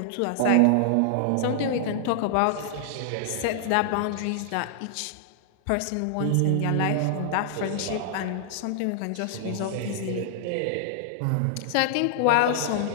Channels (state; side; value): different; both; correlation -0.01